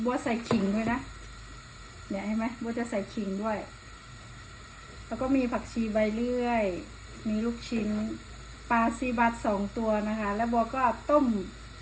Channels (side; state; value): both; identical; correlation 1.00